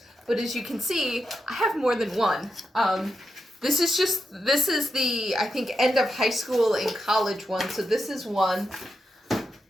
But as you can see, I have more than one. This is the, I think, end of high school and college one. So this is one.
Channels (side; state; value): both; normal; correlation 0.86